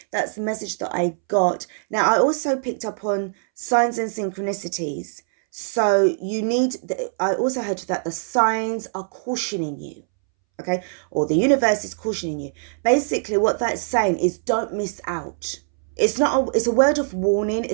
that's the message that I got. Now, I also picked up on signs and synchronicities. So I also heard that the signs are cautioning you. Okay, or the universe is cautioning you. Basically, what that's saying is don't miss out. It's a word of warning.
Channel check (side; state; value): left; silent; 64 dB below the other